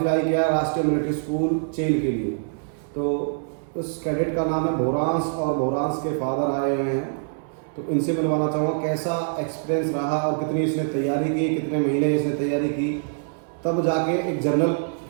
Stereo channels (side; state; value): left; silent; 59 dB below the other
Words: किया राष्ट्रीय मिलिट्री स्कूल चेल के लिए। तो उस कैडेट का नाम है भोरांस और भोरांस के फादर आए हुए हैं। तो इनसे मिलवाना चाहूँगा कैसा एक्सपीरियंस रहा और कितनी इसने तैयारी की, कितने महीने इसने तैयारी की, तब जाके एक जनरल